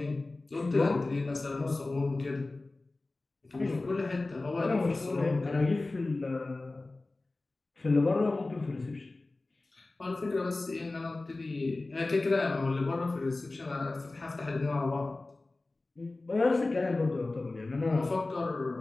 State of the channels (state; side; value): quieter; right; 3.2 dB